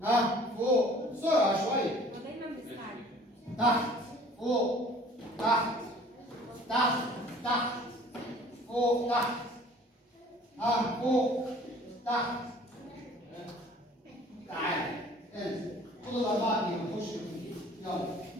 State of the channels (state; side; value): normal; both; correlation 0.51